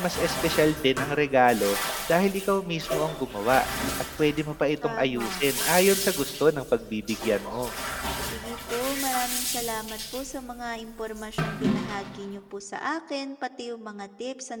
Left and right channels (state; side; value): identical; both; correlation 1.00